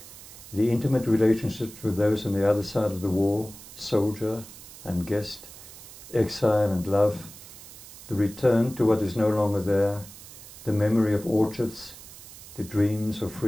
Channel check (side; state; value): right; noise; hiss, 17 dB below the sound